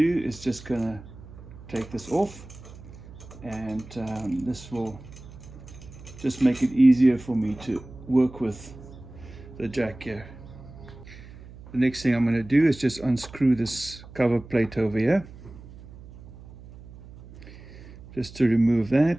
is just going to take this off, and this will just make it easier for me to work with the jack here. The next thing I'm going to do is just unscrew this cover plate over here, just to remove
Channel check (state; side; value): noise; right; hum, 17 dB below the sound